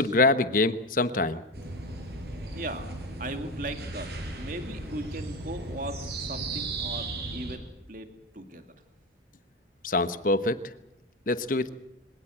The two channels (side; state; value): both; normal; correlation 0.19